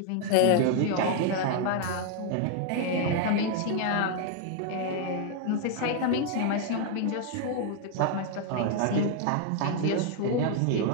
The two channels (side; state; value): both; different; correlation 0.00